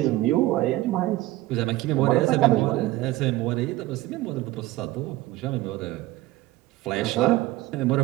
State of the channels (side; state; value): left; quieter; 17.2 dB